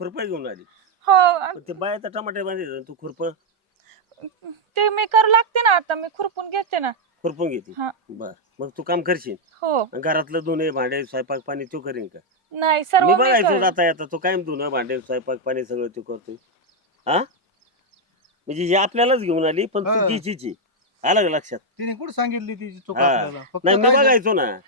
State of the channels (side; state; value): both; normal; correlation 0.00